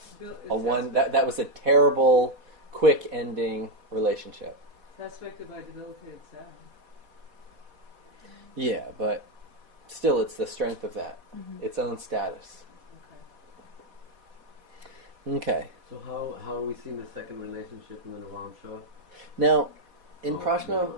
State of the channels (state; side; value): late; left; 4.1 ms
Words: one. That was a terrible, quick ending relationship. It's aspected by debilitated Saturn. Yeah, but still, it's the strength of that, its own status. Okay. Okay. So how are we seeing the second relationship in the Navamsha? Now, in Oh, Prashna,